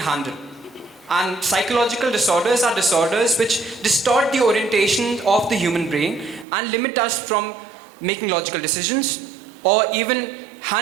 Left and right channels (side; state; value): left; drops out; at 6.5 s